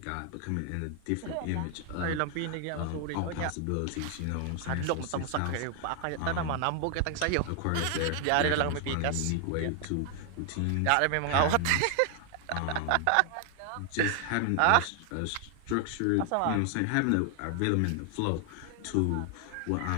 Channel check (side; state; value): both; different; correlation 0.00